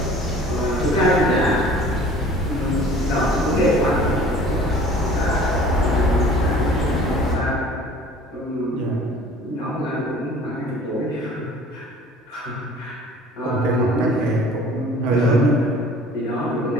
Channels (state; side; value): normal; both; correlation 0.48